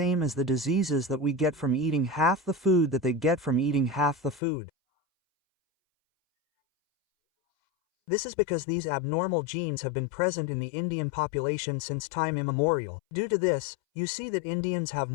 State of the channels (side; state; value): right; drops out; at 4.4 s